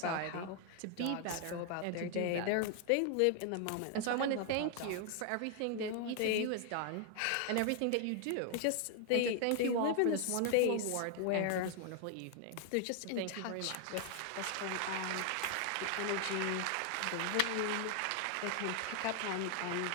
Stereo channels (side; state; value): both; different; correlation 0.00